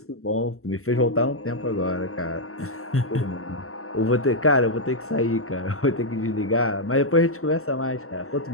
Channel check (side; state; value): right; late; 0.63 ms